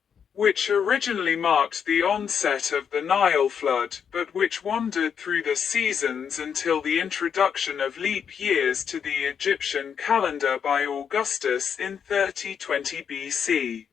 which originally marked the onset of the Nile flood, but which wandered through the seasons until the introduction of leap years to the Egyptian calendar by Augustus in 3020 BC.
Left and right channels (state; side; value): quieter; right; 7.5 dB